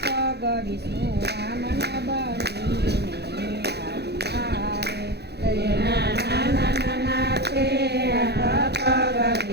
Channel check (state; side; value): late; left; 0.48 ms